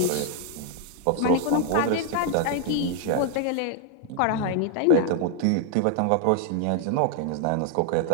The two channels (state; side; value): different; both; correlation 0.00